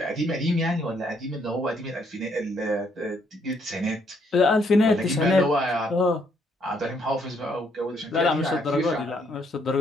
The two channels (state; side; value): normal; both; correlation 0.70